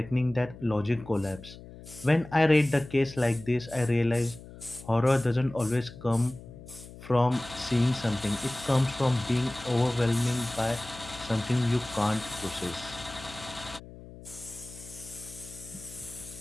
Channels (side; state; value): left; noise; hum, 17 dB below the sound